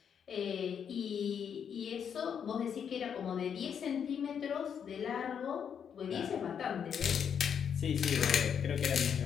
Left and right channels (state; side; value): quieter; right; 7.7 dB